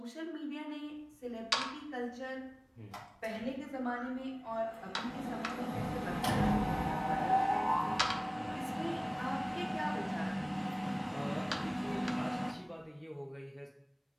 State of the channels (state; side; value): identical; both; correlation 1.00